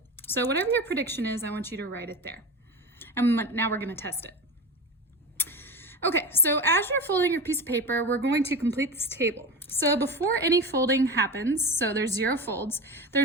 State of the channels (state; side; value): normal; both; correlation 0.26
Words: So whatever your prediction is, I want you to write it there. And now we're going to test it. Okay, so as you're folding your piece of paper, we're going to complete this table. So before any folding happens, so there's 0 folds,